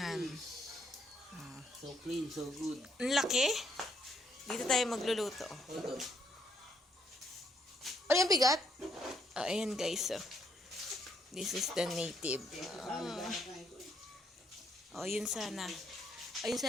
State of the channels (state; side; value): normal; both; correlation 0.72